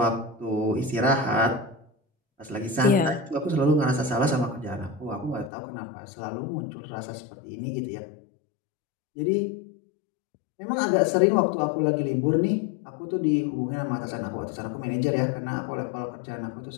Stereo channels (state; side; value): drops out; right; at 5.5 s